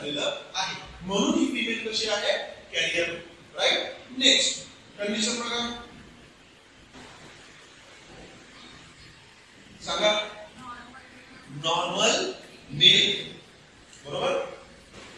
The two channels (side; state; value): both; identical; correlation 1.00